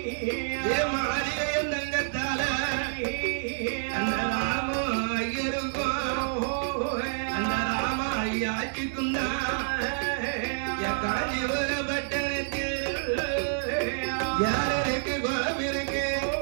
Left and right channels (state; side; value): silent; left; digital silence